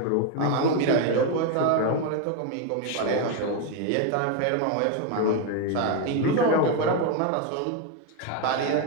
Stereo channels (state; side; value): different; both; correlation 0.02